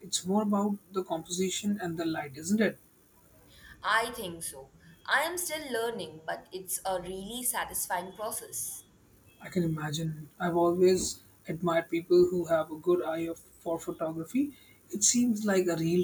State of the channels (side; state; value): both; identical; correlation 1.00